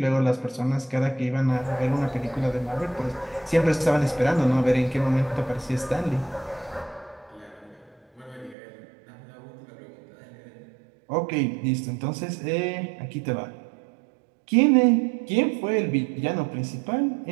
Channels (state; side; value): drops out; left; at 8.6 s